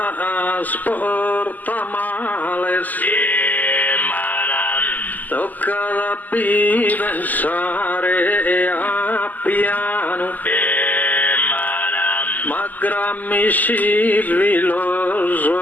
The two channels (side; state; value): right; late; 0.082 ms